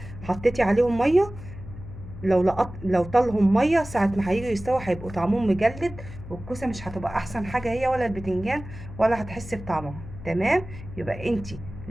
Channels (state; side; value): noise; left; hum, 13 dB below the sound